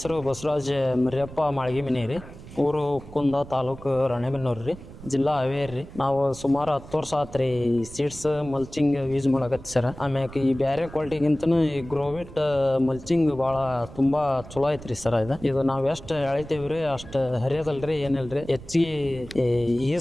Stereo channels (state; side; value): noise; right; rumble, 16 dB below the sound